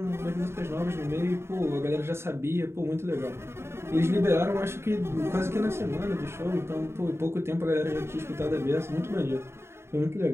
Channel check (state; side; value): late; left; 0.12 ms